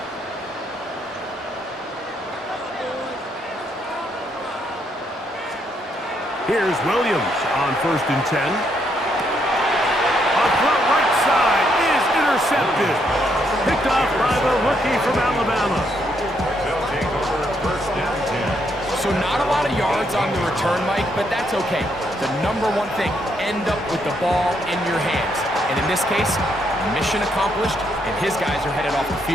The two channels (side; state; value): both; normal; correlation 0.75